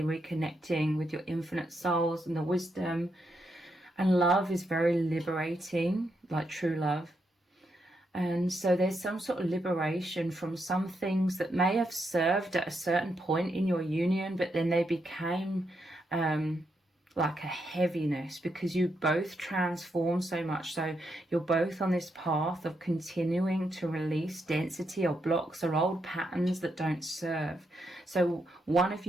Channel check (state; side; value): normal; both; correlation 0.81